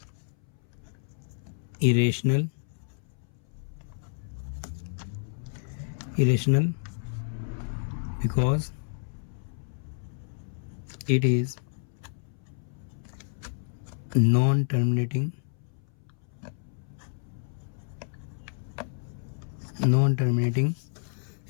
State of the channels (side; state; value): right; silent; 58 dB below the other